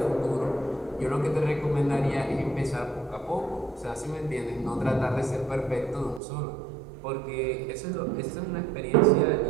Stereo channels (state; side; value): drops out; left; at 6.2 s